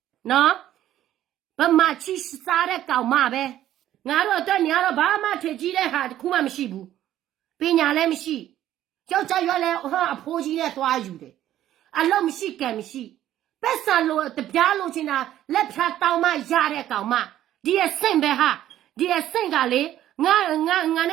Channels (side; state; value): left; quieter; 12.6 dB